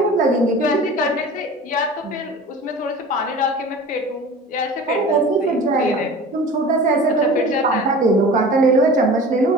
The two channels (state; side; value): normal; both; correlation 0.39